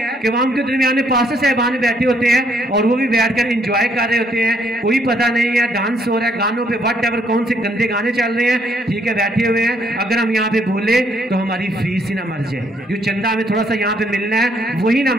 कि वहां उनके दरमियान में पास्टर साहबान बैठे होते हैं और वो भी बैठकर एंजॉय कर रहे होते हैं, कोई पता नहीं है, डांस हो रहा है, गानों पे वट एवर कौन से गंदे गाने चल रहे हैं, ठीक है, बैठे हुए हैं। अगर हम यहाँ पे बोले तो हमारी फीस ही ना मर जाए, जो चंदा हमें थोड़ा सा यहाँ पे मिलना है वही ना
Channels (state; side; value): normal; both; correlation 0.69